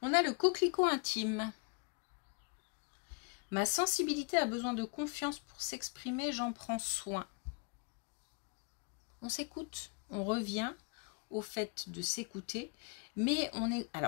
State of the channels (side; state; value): right; quieter; 34.9 dB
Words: On a le coquelicot intime. Ma sensibilité a besoin de confiance pour s'exprimer, j'en prends soin. On s'écoute, on revient au fait de s'écouter, mais on est...